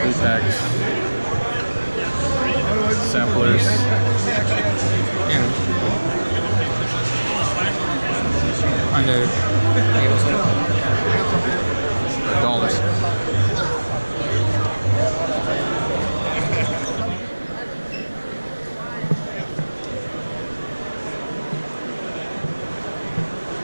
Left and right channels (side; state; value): both; inverted; correlation -1.00